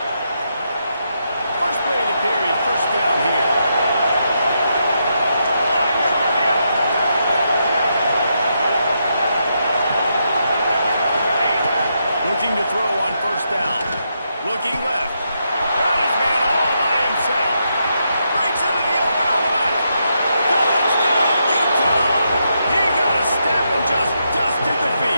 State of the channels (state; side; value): inverted; both; correlation -0.81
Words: First play of the period, first down here. Looking to throw on first down. Looking left. Got his man all by himself. Breaks into the open on the left. Touchdown, Utah! He got a step and just dusted the